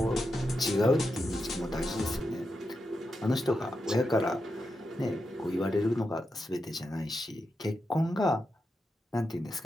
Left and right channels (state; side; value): normal; both; correlation 0.87